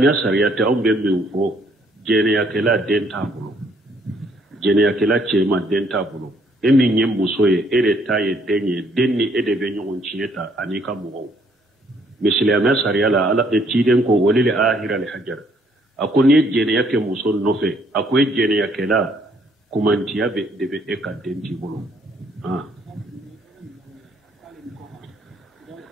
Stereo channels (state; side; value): normal; both; correlation 0.66